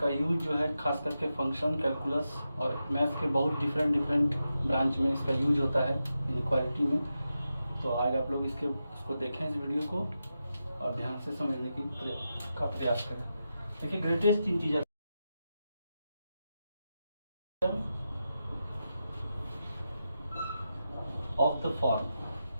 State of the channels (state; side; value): inverted; both; correlation -0.89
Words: यूज जो है खास करके फंक्शन, कैलकुलस और मैथ्स के बहुत डिफरेंट ब्रांच में इसका यूज होता है इनइक्वालिटी में। तो आज आप लोग इसको देखें इस वीडियो को और ध्यान से समझने का प्रयास करें। देखिए greatest integer of the form